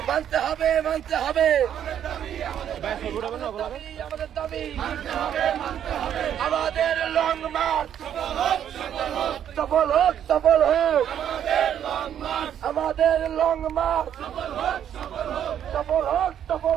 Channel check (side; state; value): left; quieter; 9.7 dB